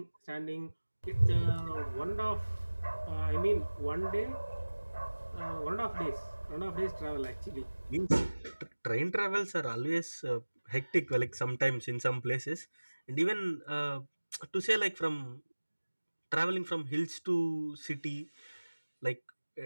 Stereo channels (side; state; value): both; inverted; correlation -1.00